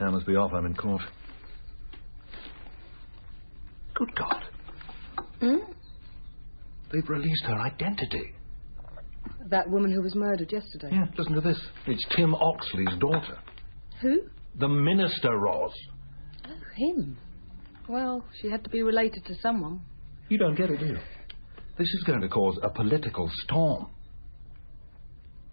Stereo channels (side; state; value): both; inverted; correlation -1.00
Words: must be off. I'm in court. Good God. Hmm? They've released her identity. That woman who was murdered yesterday. Yeah, listen to this. It's Tim Oxley's daughter. Who? The minister, Ros. Oh, him. Well, she had to be related to someone. You don't get it, do you? This is going to cause a political storm.